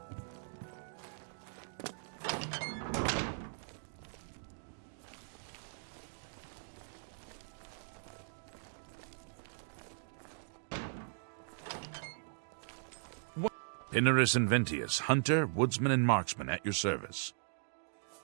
Pinarus Inventius, hunter, woodsman, and marksman at your service.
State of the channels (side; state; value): left; silent; digital silence